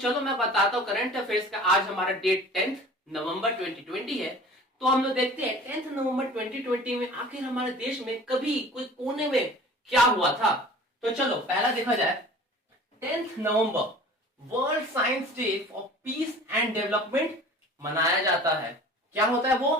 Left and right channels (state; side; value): normal; both; correlation 0.44